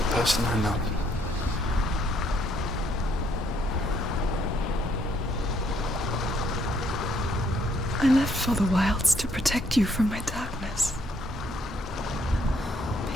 person I love. I left for the wilds to protect you from my darkness.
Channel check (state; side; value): normal; both; correlation 0.69